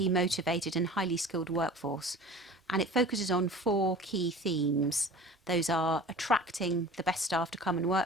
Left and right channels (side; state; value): both; normal; correlation 0.40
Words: motivated and highly skilled workforce. And it focuses on 4 key themes. Those are attracting the best staff to come and